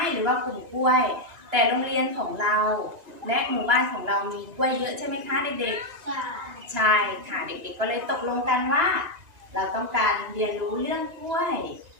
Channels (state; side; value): late; left; 1.9 ms